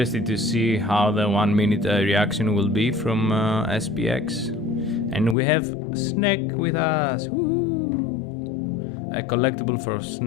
to see how the 1 minute reaction will be from SPX. And we have Snack with us. Woo! A collectible for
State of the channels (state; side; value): drops out; right; at 5.4 s